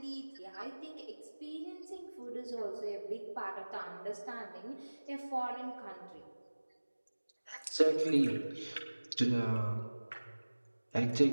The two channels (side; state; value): both; inverted; correlation -1.00